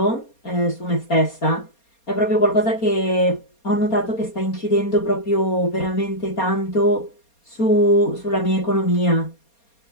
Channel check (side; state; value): right; late; 4.3 ms